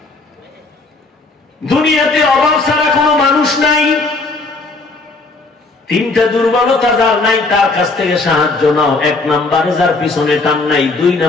দুনিয়াতে অভাব ছাড়া কোনো মানুষ নাই। 3টা দুর্বলতা যার নাই, তার কাছ থেকে সাহায্য নাও। 1 নম্বরে যার পিছনে টান নাই, 2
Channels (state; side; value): quieter; right; 3.6 dB